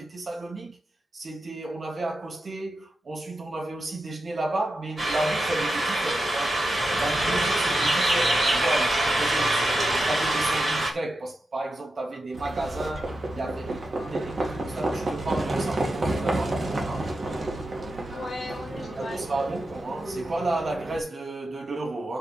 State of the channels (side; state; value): both; normal; correlation 0.89